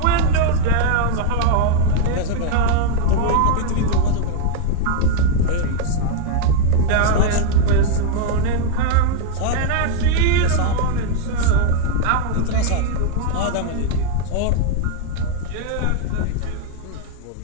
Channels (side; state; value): both; different; correlation 0.00